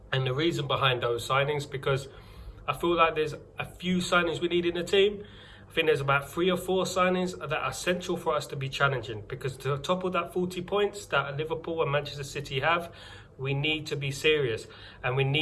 and the reason behind those signings, because I feel like there's a few signings we need in the team. I think there's about 3 or 4 signings that are essential for us to be challenging, because to topple that 40 points that Liverpool and Manchester City have, we need to be serious and we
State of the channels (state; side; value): identical; both; correlation 1.00